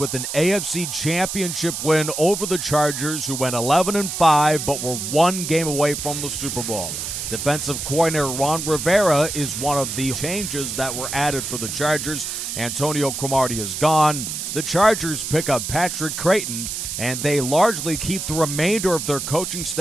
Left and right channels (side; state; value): right; noise; hiss, 5 dB below the sound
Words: an AFC Championship win over the Chargers, who went 11-5 but were one game away from the Super Bowl. Defensive coordinator Ron Rivera is one of the changes that were added for the Chargers. Antonio Cromartie is gone. The Chargers pick up Patrick Creighton, and they largely keep the remainder of their coaching